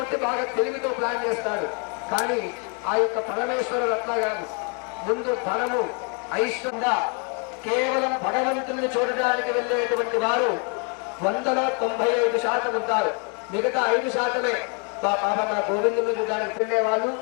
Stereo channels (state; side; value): quieter; right; 37.7 dB